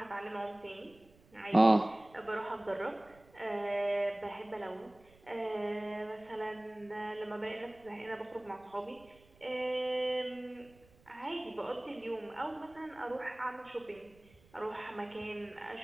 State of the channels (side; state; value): right; noise; rumble, 27 dB below the sound